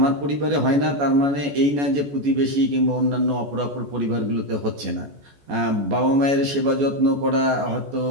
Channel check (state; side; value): late; left; 14 ms